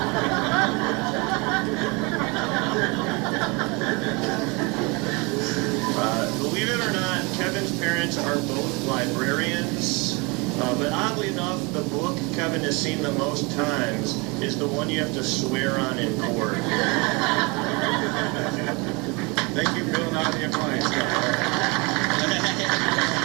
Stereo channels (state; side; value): quieter; left; 28.1 dB